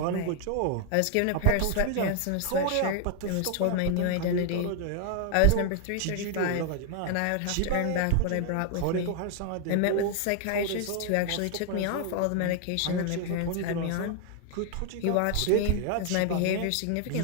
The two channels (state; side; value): different; both; correlation 0.00